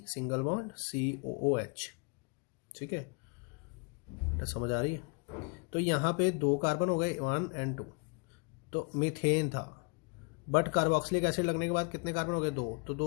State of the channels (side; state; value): right; quieter; 33.0 dB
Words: सिंगल बॉन्ड COOH। ठीक है बेटा, समझ आ रही है? तो यहाँ पे 2 कार्बन हो गए 1 and 2, तो मीथेन था, बट कार्बोक्सिलिक एसिड लगने के बाद कितने कार्बन हो गए 2, तो